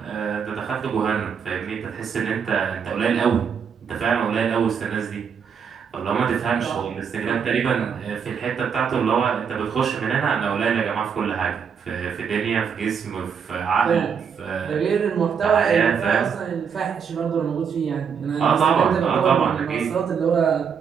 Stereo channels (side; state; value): left; quieter; 6.8 dB